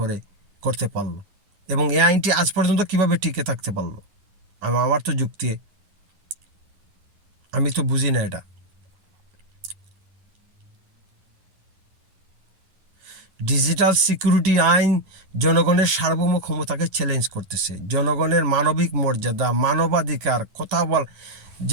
করতে পারলো, এবং এই আইনটি আজ পর্যন্ত কিভাবে টিকে থাকতে পারলো? আমার তো যুক্তি, আমি তো বুঝি না এটা। ডিজিটাল সিকিউরিটি আইন জনগণের সার্বভৌম ক্ষমতাকে চ্যালেঞ্জ করতেছে, জনগণের মানবিক মর্যাদা, মানবাধিকার কথা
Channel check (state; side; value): late; left; 10 ms